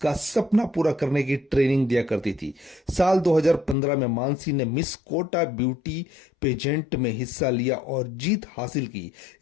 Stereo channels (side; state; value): right; drops out; at 3.8 s